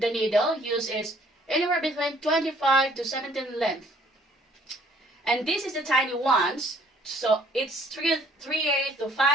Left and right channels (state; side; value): normal; both; correlation 0.60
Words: needle used is anywhere between 25 to 17 length. And this is the tiny ones, so it's 3/8 to